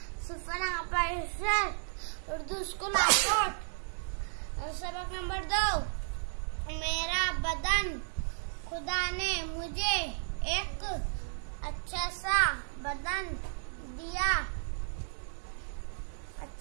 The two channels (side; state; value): left; silent; digital silence